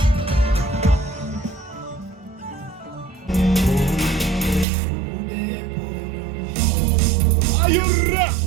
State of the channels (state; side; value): drops out; left; at 4.7 s